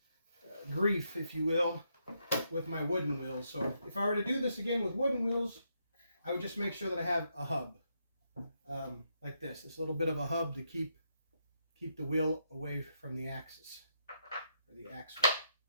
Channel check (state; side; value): inverted; both; correlation -0.79